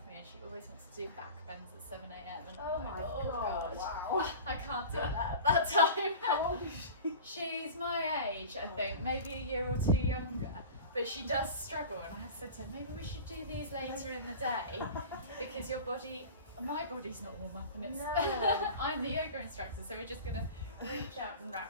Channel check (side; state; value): both; inverted; correlation -0.35